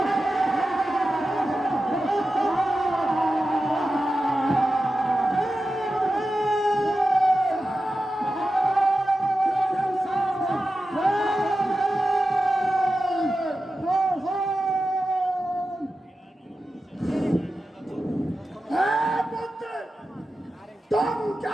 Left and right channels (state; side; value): normal; both; correlation 0.92